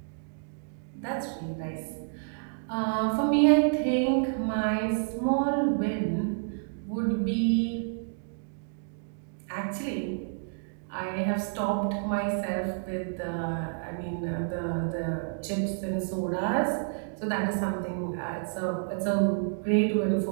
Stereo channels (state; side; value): silent; left; digital silence